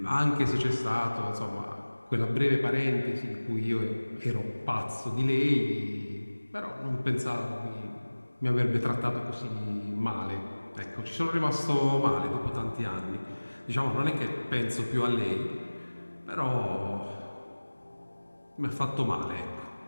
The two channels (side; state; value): both; inverted; correlation -1.00